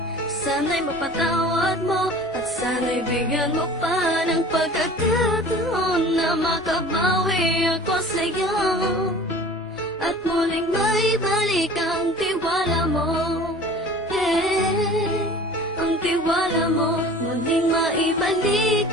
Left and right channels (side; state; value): both; normal; correlation 0.43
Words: Sana'y mapatawad mo at sana'y bigyan mo pa ng pagkakataon na makabawi ako sa'yo at muling maibalik ang tiwala mo. Ang tiwala mo, muling maibalik